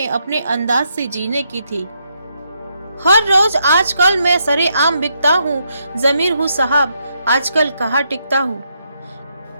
अपने अंदाज से जीने की थी। हर रोज आजकल मैं सरे आम बिकता हूँ, जमीर हूँ साहब, आजकल कहाँ टिकता हूँ।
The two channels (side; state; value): both; inverted; correlation -0.78